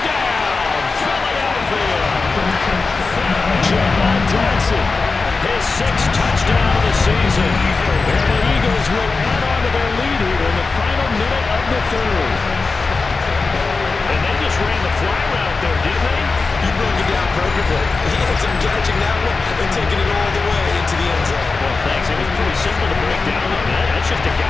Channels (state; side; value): quieter; right; 4.1 dB